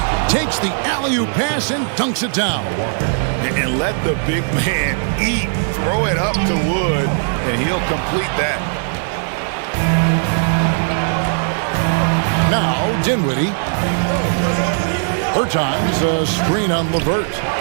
Takes the alley-oop pass and dunks it down. And let the big man eat. Throw it up to Wood, and he'll complete that. Now Dinwiddie. Bertans a screen on LeVert.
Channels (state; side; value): silent; left; digital silence